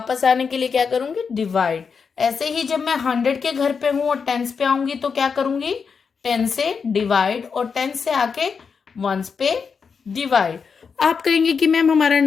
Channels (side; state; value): right; quieter; 5.8 dB